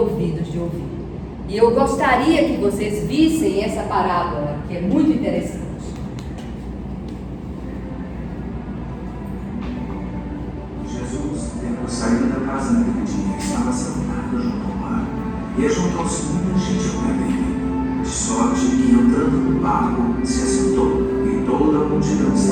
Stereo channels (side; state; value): both; identical; correlation 1.00